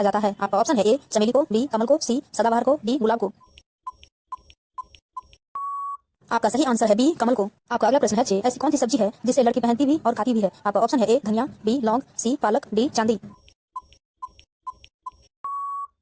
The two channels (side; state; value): both; identical; correlation 1.00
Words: जाता है? आपका ऑप्शन है ए चमेली को, बी कमल को, सी सदाबहार को, डी गुलाब को। आपका सही आंसर है बी कमल को। आपका अगला प्रश्न है 6, ऐसी कौन सी सब्जी है जिसे लड़की पहनती भी और खाती भी है? आपका ऑप्शन है ए धनिया, बी लौंग, सी पालक, डी चांदी।